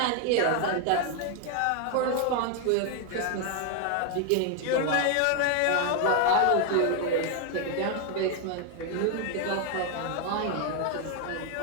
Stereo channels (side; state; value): both; different; correlation 0.00